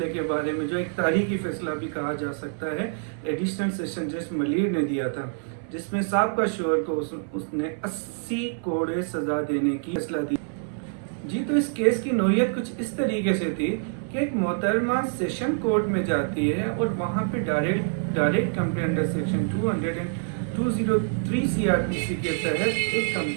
के बारे में, जो एक तारीखी फैसला भी कहा जा सकता है, एडिशनल सेशन जज मलिर ने दिया था, जिसमें साबका शोहर को उसने 80 करोड़ सजा देने की फैसला दी। जी, तो इस केस की नोयत कुछ इस तरीके से थी कि एक मोहतरमा सेशन कोर्ट में जाती है और वहाँ पे direct complaint under section 203 CrPC के तहत एक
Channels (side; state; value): left; silent; 61 dB below the other